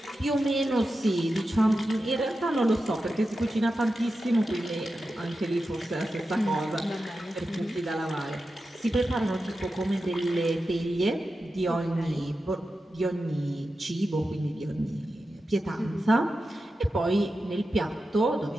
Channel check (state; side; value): normal; both; correlation 0.91